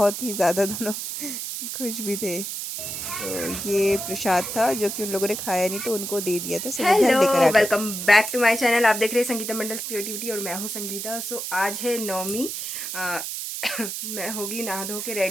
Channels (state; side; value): noise; right; hiss, 5 dB below the sound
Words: ही ज़्यादा दोनों खुश भी थे। सो ये प्रसाद था जो कि उन लोगों ने खाया नहीं तो उनको दे दिया था। सो वो घर हेलो, लेकर आ गए। Welcome back to my channel. आप देख रहे हैं संगीता मंडल क्रिएटिविटी और मैं हूं संगीता। आज है नवमी। अ, मैं होगी नहा धो के